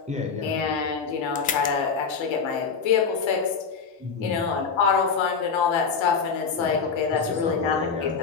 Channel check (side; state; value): right; quieter; 5.6 dB